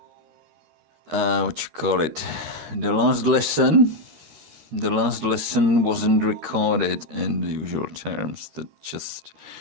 what you call it? The last lesson wasn't recorded in the usual terms. That just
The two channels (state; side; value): late; left; 13 ms